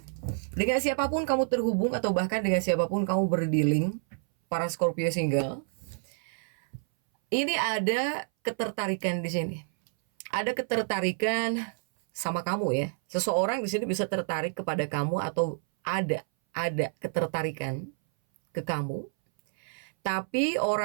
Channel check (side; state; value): left; silent; 59 dB below the other